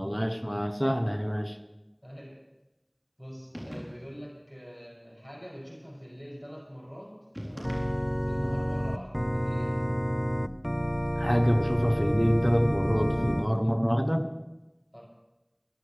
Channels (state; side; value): identical; both; correlation 1.00